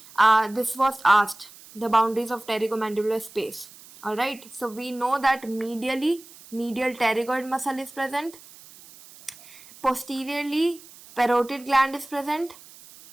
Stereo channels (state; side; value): noise; right; hiss, 21 dB below the sound